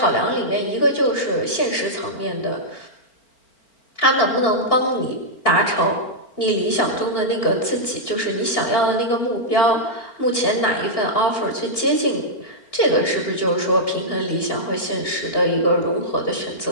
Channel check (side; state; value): right; late; 4.4 ms